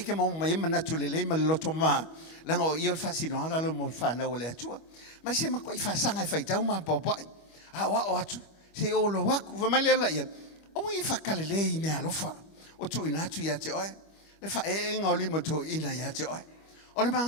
ke mo mai mana tu le ma lo toma la ngo io fa sino ala lo mo fa na o le tua ma se ma ko fa sanga fa tau ma popo a wa o atu se o lo wa ku ma le la ia o i fa kale le me alofa o tu ina tu ya te oe le fa e nga li mo tu ina ya te oe o le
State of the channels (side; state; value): right; late; 25 ms